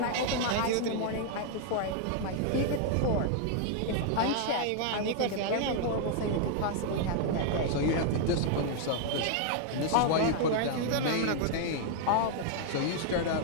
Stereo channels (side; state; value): both; different; correlation 0.00